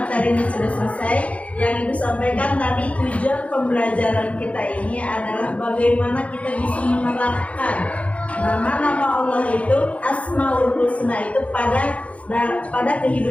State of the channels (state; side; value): late; right; 0.065 ms